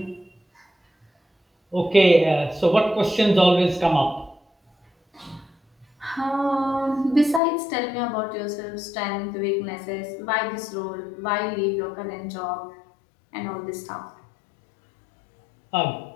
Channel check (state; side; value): drops out; right; at 7.4 s